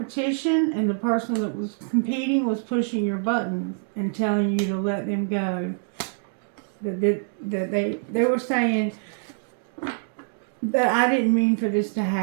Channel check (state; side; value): silent; left; digital silence